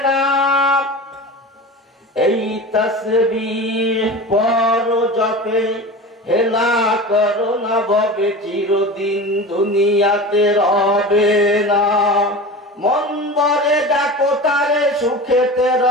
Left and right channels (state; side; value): normal; both; correlation 0.31